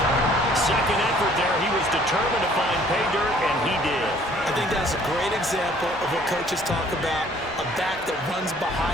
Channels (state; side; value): normal; both; correlation 0.58